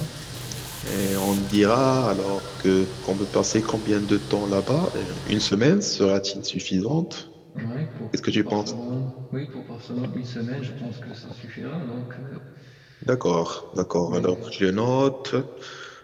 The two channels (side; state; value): both; identical; correlation 1.00